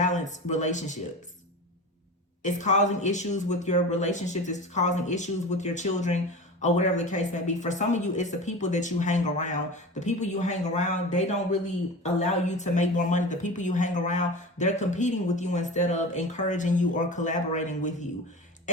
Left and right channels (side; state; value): both; normal; correlation 0.32